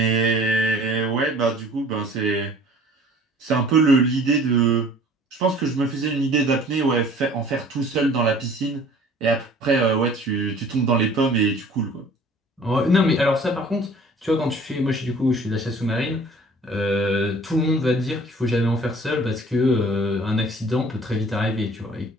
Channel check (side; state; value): both; normal; correlation 0.50